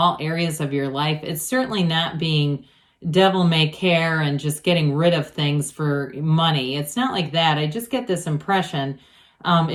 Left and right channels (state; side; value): identical; both; correlation 1.00